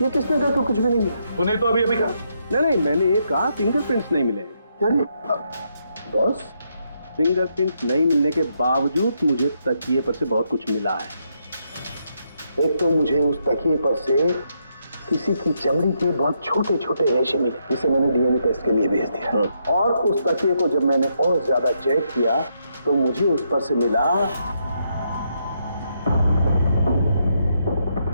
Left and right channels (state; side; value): inverted; both; correlation -0.78